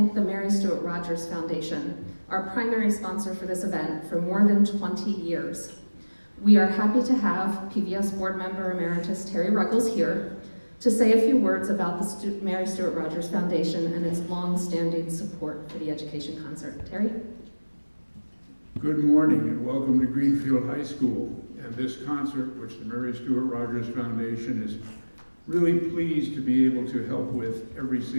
the Mary Stuart Rogers Foundation, our primary sponsor for this event for more than 20 years. We are happy to have PVS Board Member Emeritus Terry Ruggles here to say a few words about the Mary Stuart Rogers Foundation and its long-standing support for the education concert. Terry? Good morning and welcome to Greenfield High School and this concert, which the Mary Stuart Rogers Foundation is really pleased to be able to help with every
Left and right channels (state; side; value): inverted; both; correlation -1.00